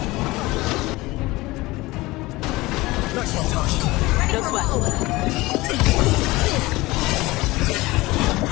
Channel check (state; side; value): quieter; right; 20.5 dB